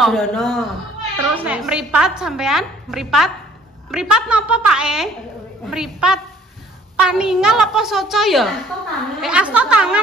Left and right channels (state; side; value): normal; both; correlation 0.58